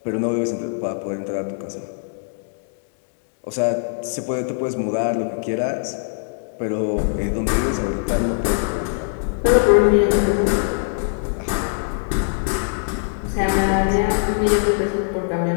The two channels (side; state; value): right; silent; digital silence